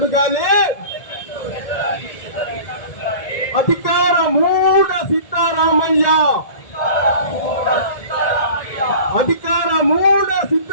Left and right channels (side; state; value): right; late; 1.8 ms